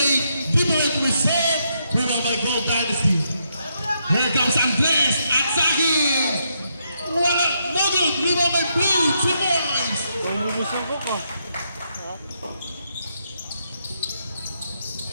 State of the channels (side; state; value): both; inverted; correlation -0.78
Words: deeper into his serve, rebound by Gold Dynasty. Here comes Andres, attacking! Wala, no good, rebound by Blue, 2 points! Kung lulusin ko ko.